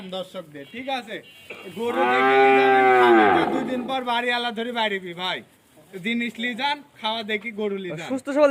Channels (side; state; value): both; identical; correlation 1.00